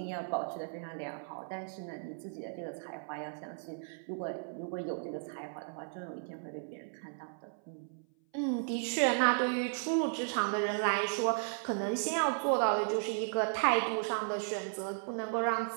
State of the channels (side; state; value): left; silent; 54 dB below the other